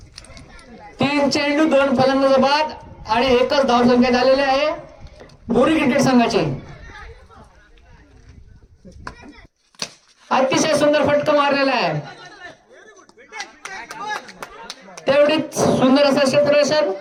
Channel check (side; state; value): both; identical; correlation 1.00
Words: 3 चेंडू 2 फलंदाज बाद आणि एकच धाव संख्या झालेली आहे बुरी क्रिकेट संघाची. अतिशय सुंदर फटका मारलेला आहे, तेवढीच सुंदर असं क्षेत्ररक्षण,